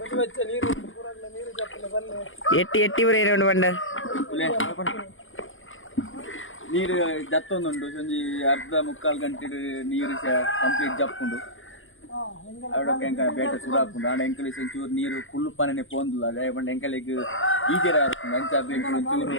ಎಟ್ಟಿ ಬರೀ ಬಂಡ ನೀರು ಜತ್ತೊಂದುಂಡು ಒಂಜಿ ಅರ್ಧ ಮುಕ್ಕಾಲು ಗಂಟೆ ನೀರು ಕಂಪ್ಲೀಟ್ ಜಪ್ಪುಂಡು ಅವಡಕ್ಕೆ ಎಂಕ ಬೇಟ ಸುಡಾಪುಂಡು ಆಂಡ ಎಂಕಲ್ ಒಂಚೂರು ನೀರು ಫುಲ್ ಪನನೆ ಪೋಂದುಲ್ಲ ಅದೇ ಬಂಡ ಎಂಕಲಿಗೆ ಈಜೆರ ಆಡ್ತುಂಡು ಅಂಚಾದ ಎಂಕಲ್ ಒಂಚೂರು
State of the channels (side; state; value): right; late; 0.58 ms